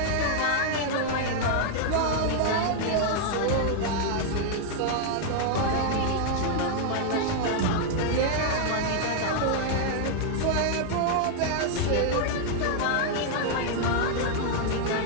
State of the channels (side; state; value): both; different; correlation 0.00